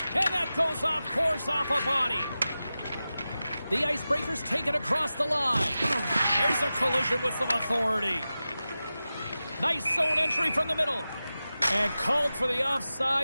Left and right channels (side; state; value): both; inverted; correlation -0.94